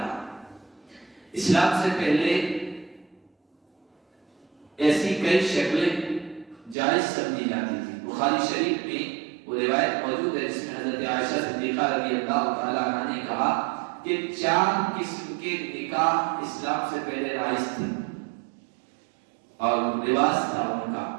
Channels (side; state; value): left; drops out; at 6.8 s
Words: اسلام سے پہلے ایسی کئی شکلیں جائز سمجھی جاتی تھی۔ بخاری شریف میں وہ روایت موجود ہے جس میں حضرت عائشہ صدیقہ رضی اللہ تعالی عنہا نے کہا کہ 4 قسم کے نکاح اسلام سے پہلے رائج تھے اور رواج تھا ان کا،